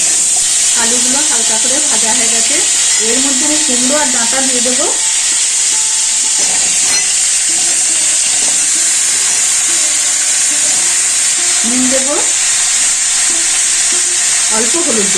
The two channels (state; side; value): identical; both; correlation 1.00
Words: আলুগুলো হালকা করে ভাজা হয়ে গেছে, এর মধ্যে আমি কুমড়ো আর ডাঁটা দিয়ে দেবো। নুন দেবো, অল্প হলুদ